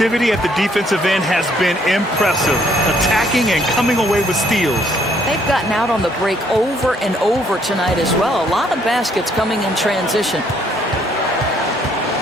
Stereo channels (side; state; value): both; normal; correlation 0.66